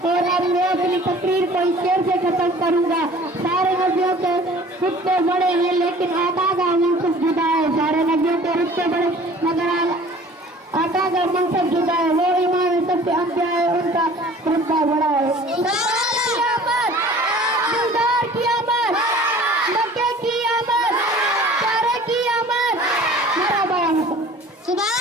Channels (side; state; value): both; normal; correlation 0.47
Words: और अब मैं अपनी तकरीर को इस शेर से खत्म करूंगा। सारे नबियों के रुतबे बड़े हैं लेकिन आका का मनसब जुदा है। सारे नबियों के रुतबे बड़े मगर आका का मनसब जुदा है। वो इमाम सबसे अंबिया है, उनका रुतबा बड़ा है।